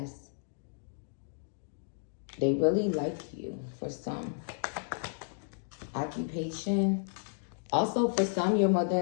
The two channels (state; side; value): silent; right; digital silence